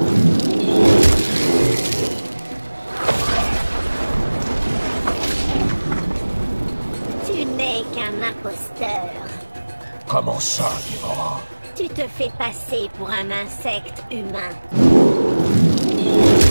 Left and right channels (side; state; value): both; inverted; correlation -1.00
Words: Tu n'es qu'un imposteur. Comment ça, Déborah? Tu te fais passer pour un insecte humain.